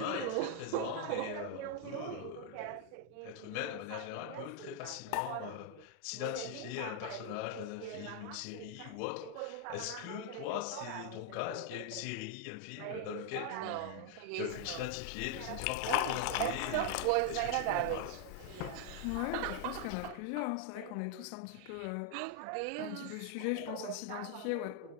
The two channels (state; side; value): different; both; correlation 0.00